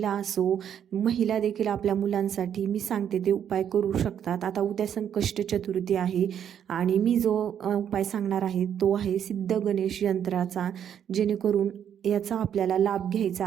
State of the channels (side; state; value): left; quieter; 9.1 dB